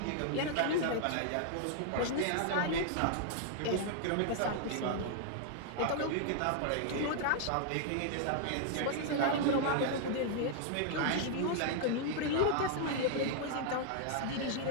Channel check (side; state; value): both; different; correlation -0.01